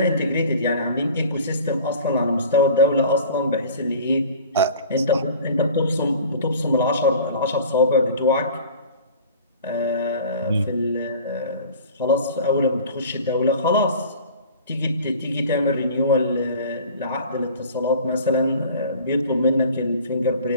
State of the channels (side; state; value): both; inverted; correlation -0.43